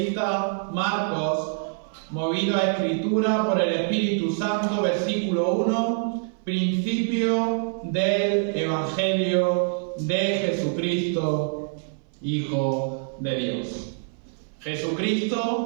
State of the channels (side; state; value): left; silent; 59 dB below the other